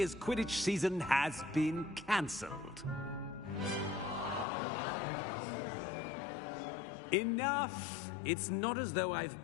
Quidditch season has been cancelled. Enough! It's not as though I've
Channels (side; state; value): right; drops out; at 4.5 s